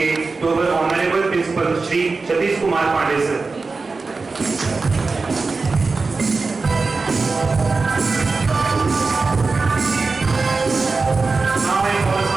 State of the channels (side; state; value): left; quieter; 4.1 dB